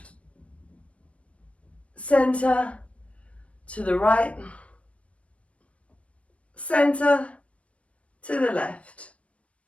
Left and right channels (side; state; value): right; late; 0.063 ms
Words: Center. To the right. Center. To the left.